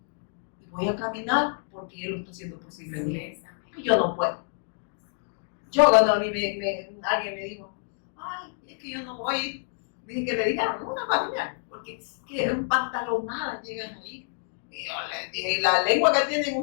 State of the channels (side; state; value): right; silent; digital silence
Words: Y voy a caminar porque Él lo está haciendo posible. Y yo no puedo. Yo cuando a mí alguien me dijo, ay, es que yo no voy, dije que le digan una familia, porque es que un pantalonada llegan ahí. Y yo les dije, y la lengua que tienen